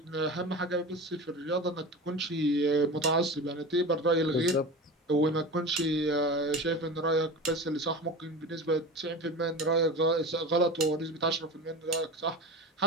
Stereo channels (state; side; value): normal; both; correlation 0.30